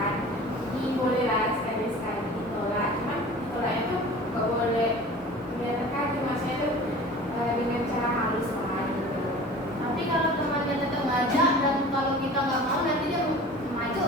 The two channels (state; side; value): normal; both; correlation 0.41